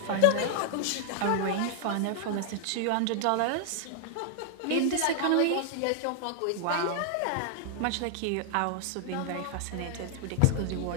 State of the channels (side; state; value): both; different; correlation 0.00